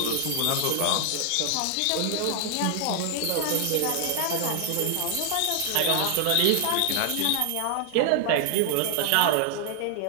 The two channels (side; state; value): both; different; correlation 0.00